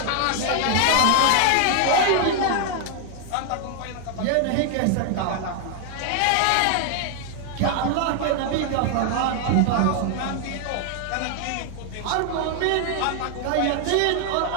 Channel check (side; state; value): both; different; correlation 0.00